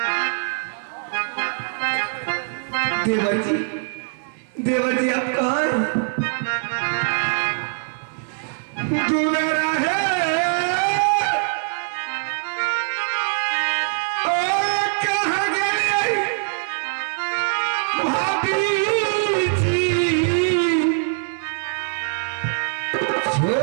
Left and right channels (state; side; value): silent; left; 64 dB below the other